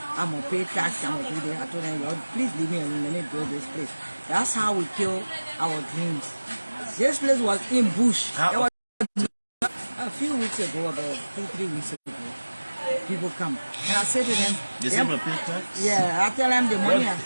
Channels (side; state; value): both; inverted; correlation -1.00